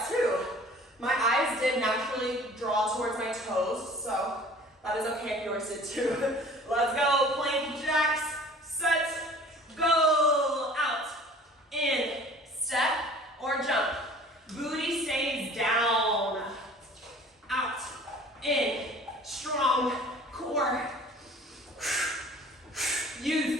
too. My eyes did naturally draw towards my toes, so that is okay if yours did too. Let's go, plank jacks, set, go, out, in, step, or jump. Booty stays down, out, in, strong core.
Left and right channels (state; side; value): normal; both; correlation 0.48